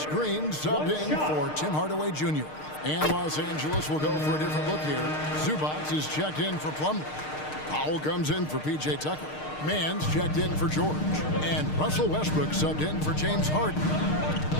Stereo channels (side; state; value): right; late; 6.6 ms